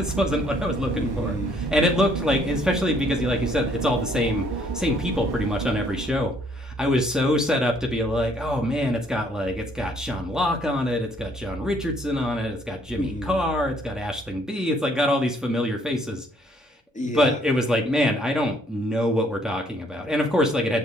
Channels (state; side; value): normal; both; correlation 0.64